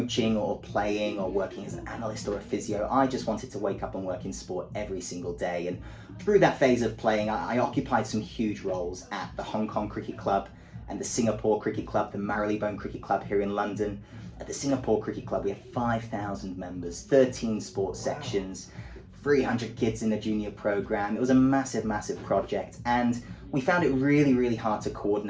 or playing or working as an analyst or a physio, I just wanted to wake up and work in sport every single day. And through that phase of playing, I occupied some huge roles at the Hong Kong Cricket Club and the Singapore Cricket Club, the Marylebone Cricket Club here in London. At the Singapore Cricket Club, we have 5,000 members, 13 sports sections, 300 kids in the junior program. It was a massive, massive project, and we found it really, really hard to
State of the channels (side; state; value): both; identical; correlation 1.00